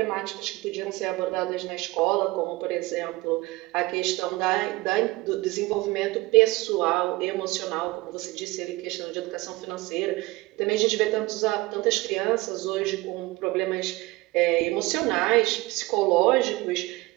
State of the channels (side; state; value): left; quieter; 21.1 dB